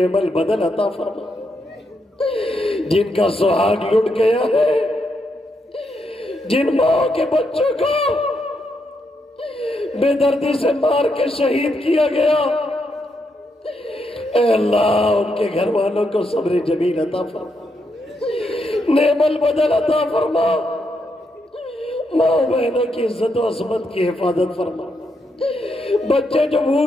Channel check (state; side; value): normal; both; correlation 0.80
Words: البدل عطا فرما، جن کا سہاگ لٹ گیا ہے، جن ماں کے بچوں کو بے دردی سے مار کے شہید کیا گیا، اے اللہ ان کے گھر والوں کو صبر جمیل عطا فرما، نعم البدل عطا فرما، ماں بہنوں کی عزت و عصمت کی حفاظت فرما، بچے جو